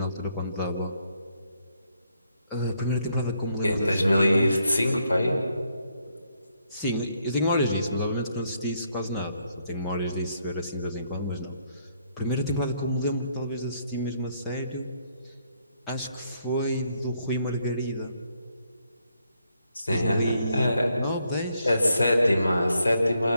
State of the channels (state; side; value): inverted; both; correlation -0.74